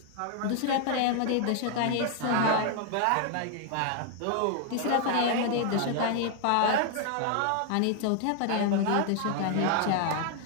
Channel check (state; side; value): different; both; correlation 0.00